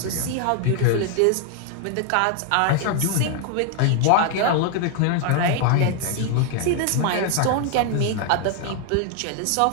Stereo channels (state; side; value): different; both; correlation 0.00